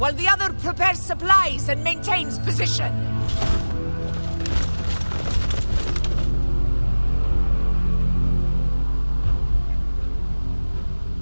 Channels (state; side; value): inverted; both; correlation -1.00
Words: the other prepares supplies and maintains position.